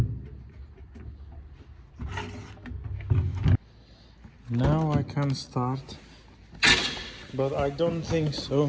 Now I can start, but I don't think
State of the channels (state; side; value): identical; both; correlation 1.00